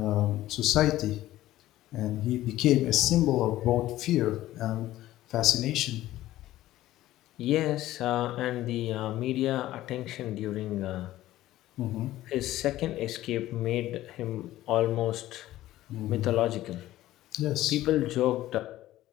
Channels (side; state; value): right; quieter; 15.0 dB